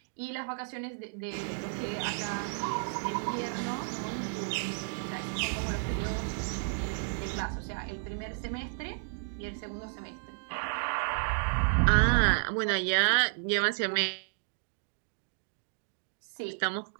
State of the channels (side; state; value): left; silent; digital silence